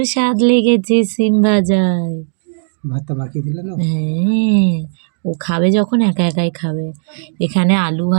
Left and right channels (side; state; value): left; silent; digital silence